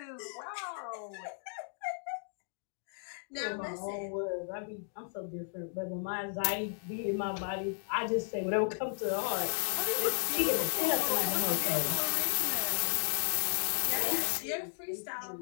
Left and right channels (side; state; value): right; silent; digital silence